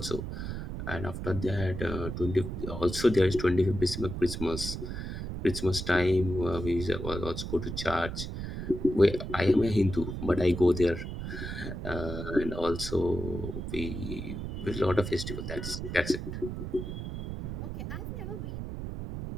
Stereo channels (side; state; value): right; noise; rumble, 6 dB below the sound